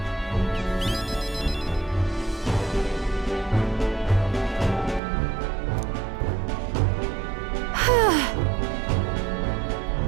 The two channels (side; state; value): left; drops out; at 5.0 s